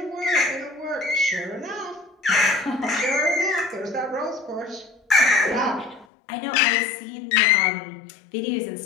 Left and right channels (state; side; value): drops out; right; at 6.1 s